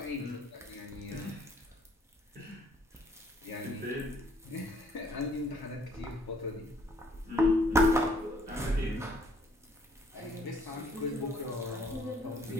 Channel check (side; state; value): both; normal; correlation 0.63